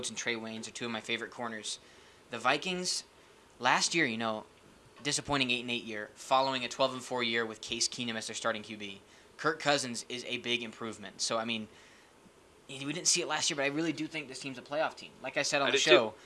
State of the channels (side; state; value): both; identical; correlation 1.00